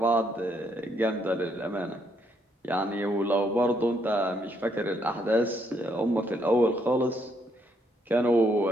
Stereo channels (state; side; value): normal; both; correlation 0.73